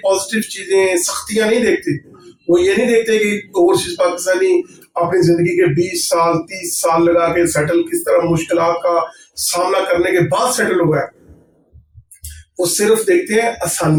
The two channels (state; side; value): identical; both; correlation 1.00